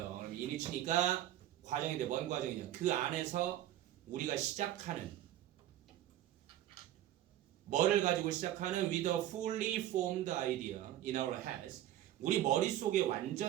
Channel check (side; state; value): left; quieter; 13.0 dB